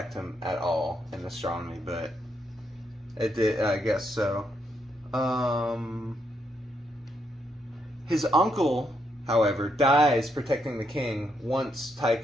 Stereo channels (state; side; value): normal; both; correlation 0.78